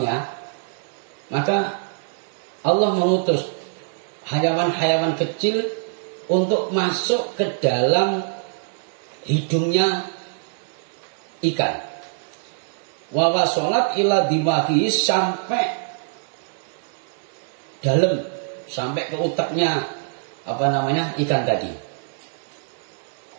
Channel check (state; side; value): silent; left; 58 dB below the other